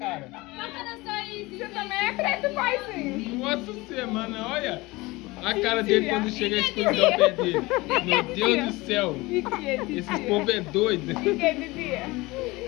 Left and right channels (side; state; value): right; quieter; 21.9 dB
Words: Você também é preto, paizinho. Nossa semana, olha a cara dele quando chega a escuridão perto dele. Meu Deus do céu. Esses povo é doido.